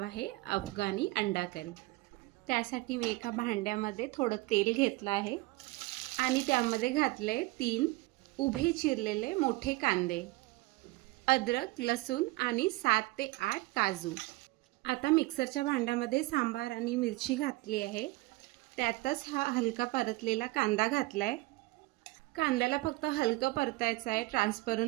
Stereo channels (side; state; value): left; quieter; 21.8 dB